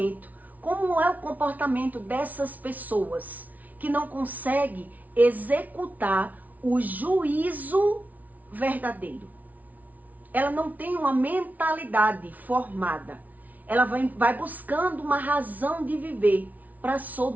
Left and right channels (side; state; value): left; late; 0.075 ms